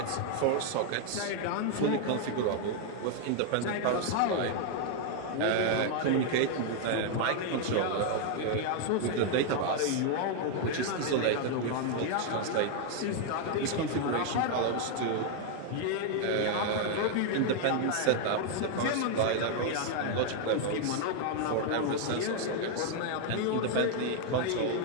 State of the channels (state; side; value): different; both; correlation 0.00